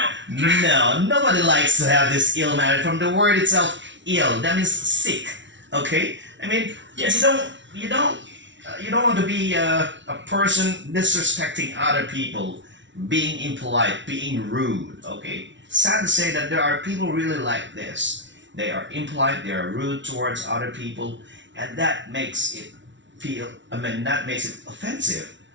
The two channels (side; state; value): left; late; 0.54 ms